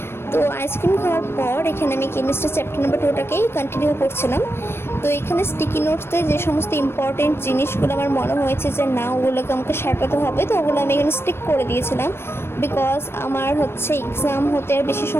তো আইসক্রিম খাওয়ার পর এখানে আমি কেমিস্ট্রি চ্যাপ্টার নাম্বার 2টাকেই কন্টিনিউ করছিলাম। তো এখানে স্টিকি নোটসে যে সমস্ত ইম্পর্টেন্ট জিনিসগুলো আমার মনে হয়েছে যে না ওগুলোকে আমাকে সাঁটাতে হবে, তো ওগুলো আমি এখানে স্টিক করে দিয়েছিলাম বিকজ আমার এক্সাম হতে আর বেশি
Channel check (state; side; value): late; right; 0.12 ms